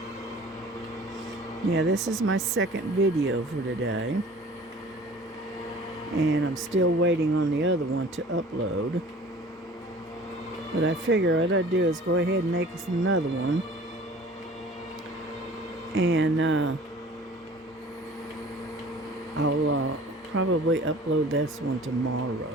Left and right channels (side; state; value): both; normal; correlation 0.47